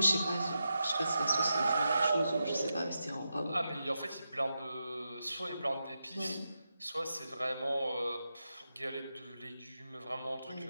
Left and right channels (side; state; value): both; inverted; correlation -0.88